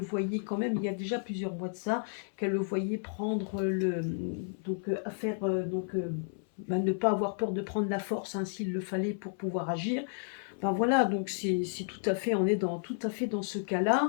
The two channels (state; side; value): silent; right; 56 dB below the other